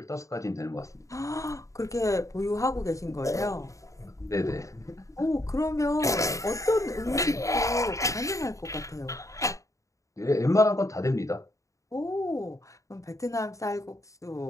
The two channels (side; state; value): right; late; 0.16 ms